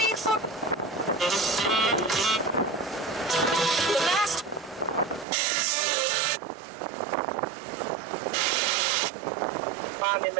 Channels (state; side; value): drops out; left; at 5.2 s